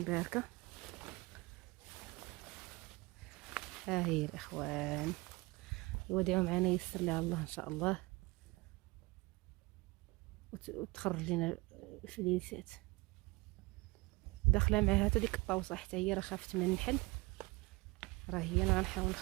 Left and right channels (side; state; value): left; quieter; 24.0 dB